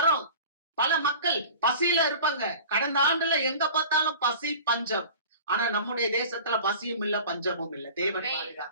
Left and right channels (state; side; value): inverted; both; correlation -0.40